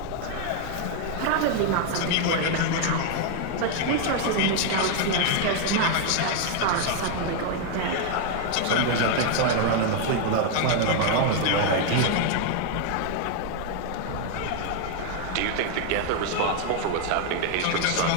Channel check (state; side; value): different; both; correlation 0.00